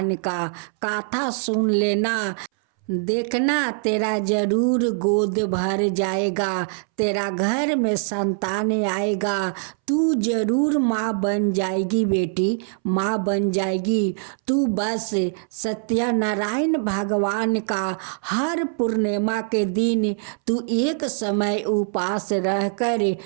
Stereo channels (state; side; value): silent; left; 63 dB below the other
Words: का कथा सुन लेना। देखना तेरा जरूर गोद भर जाएगा, तेरा घर में संतान आएगा, तू जरूर माँ बन जाएगी बेटी, माँ बन जाएगी। तू बस सत्यनारायण भगवान का हर पूर्णिमा के दिन तू एक समय उपवास रहकर